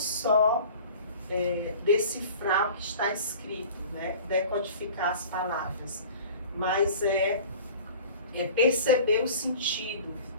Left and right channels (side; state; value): both; inverted; correlation -0.42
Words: decifrar o que está escrito, né? Decodificar as palavras, mas perceber o sentido,